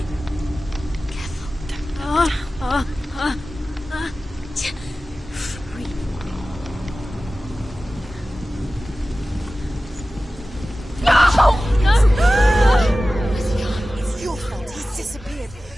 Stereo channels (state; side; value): normal; both; correlation 0.96